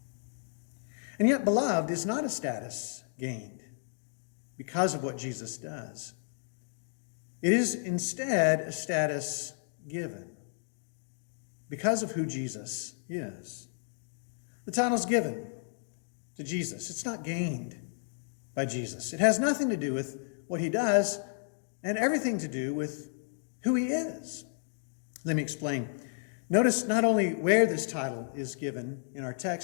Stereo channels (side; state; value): right; silent; digital silence